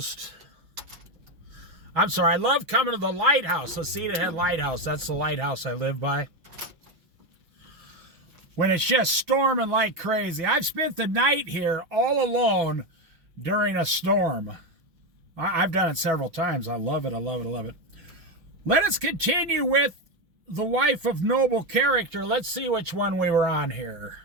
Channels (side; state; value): left; late; 6.0 ms